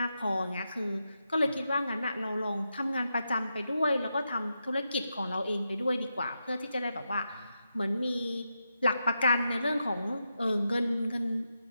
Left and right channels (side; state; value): both; inverted; correlation -0.86